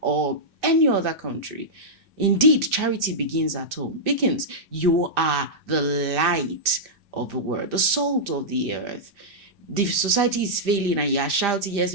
or any other country. Indeed, charity begins at home. Because you are the light of the world, the salt of the earth. The society is failing and you are shouting, yes,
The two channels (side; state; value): left; late; 2.6 ms